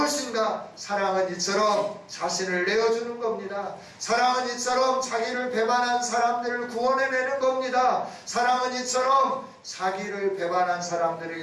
사랑은 이처럼 자신을 내어주는 겁니다. 사랑은 이처럼 자기를 배반한 사람들을 구원해내는 겁니다. 사랑은 이처럼 자기를 배반한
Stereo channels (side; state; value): both; identical; correlation 1.00